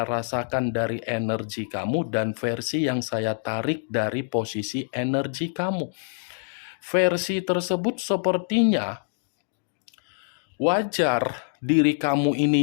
rasakan dari energi kamu dan versi yang saya tarik dari posisi energi kamu. Versi tersebut sepertinya wajar diri kamu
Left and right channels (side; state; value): right; silent; digital silence